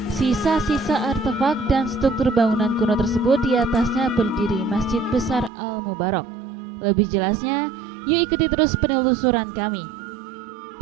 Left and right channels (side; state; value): left; drops out; at 5.5 s